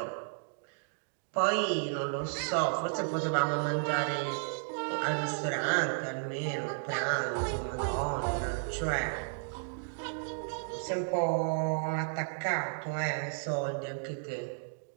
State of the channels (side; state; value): left; silent; digital silence